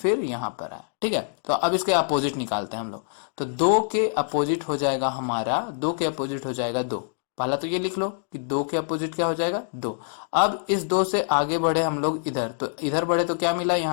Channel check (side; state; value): right; silent; digital silence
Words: यहाँ पर आया, ठीक है। तो अब इसके अपोजिट निकालते हैं हम लोग। तो दो के अपोजिट हो जाएगा हमारा, दो के अपोजिट हो जाएगा दो। पहला तो ये लिख लो कि दो के अपोजिट क्या हो जाएगा, दो। अब इस दो से आगे बढ़े हम लोग इधर, तो इधर बढ़े तो क्या मिला,